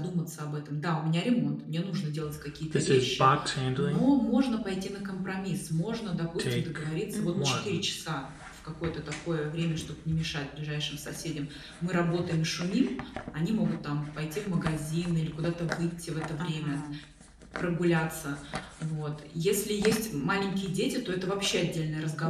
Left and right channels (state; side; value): identical; both; correlation 1.00